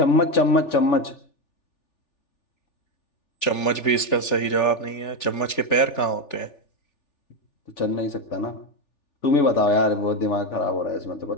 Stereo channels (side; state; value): right; late; 3.4 ms